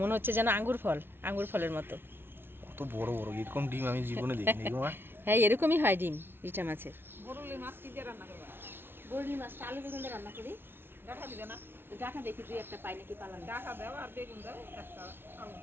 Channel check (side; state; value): left; late; 0.11 ms